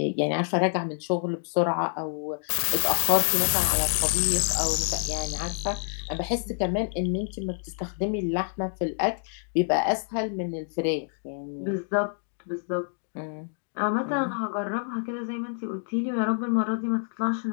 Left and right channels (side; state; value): right; silent; digital silence